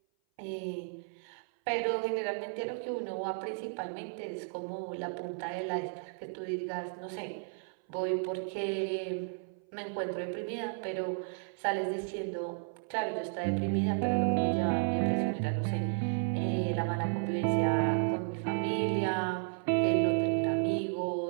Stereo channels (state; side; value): silent; left; 56 dB below the other